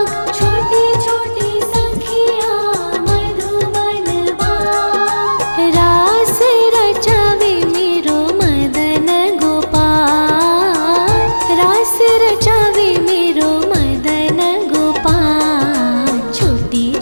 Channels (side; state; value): both; inverted; correlation -1.00